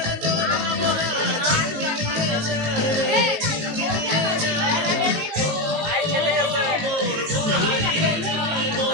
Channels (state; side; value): late; left; 19 ms